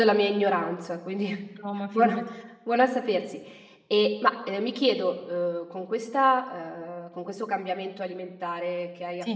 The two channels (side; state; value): both; identical; correlation 1.00